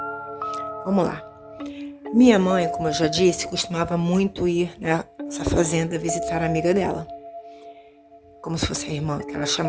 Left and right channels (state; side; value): identical; both; correlation 1.00